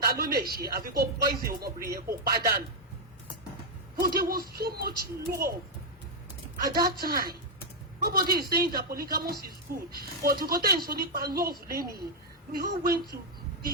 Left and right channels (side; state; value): both; normal; correlation -0.01